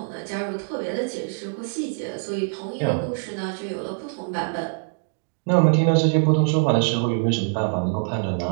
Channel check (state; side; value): silent; left; digital silence